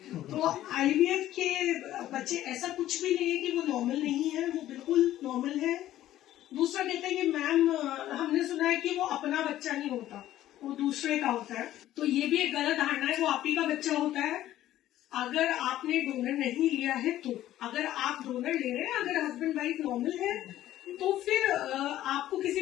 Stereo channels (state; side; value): quieter; right; 13.5 dB